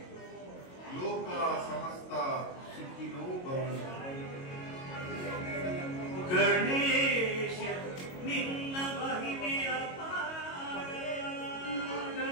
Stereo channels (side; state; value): right; late; 22 ms